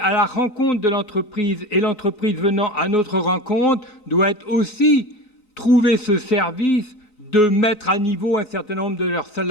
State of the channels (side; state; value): right; late; 3.9 ms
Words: la rencontre de l'entreprise, et l'entreprise venant à notre rencontre doit aussi trouver ce service de mettre à niveau un certain nombre de leurs